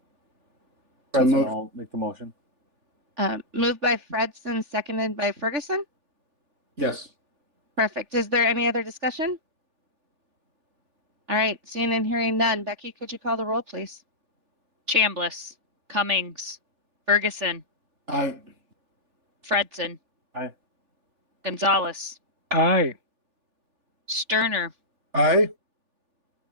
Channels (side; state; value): left; late; 3.4 ms